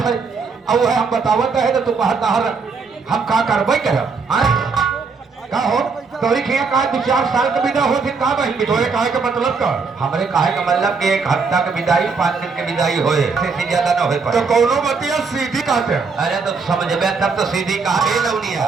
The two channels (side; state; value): left; quieter; 4.8 dB